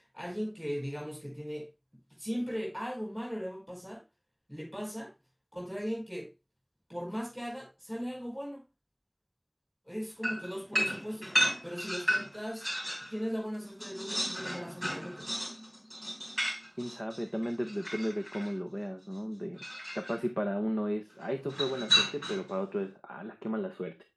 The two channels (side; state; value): both; identical; correlation 1.00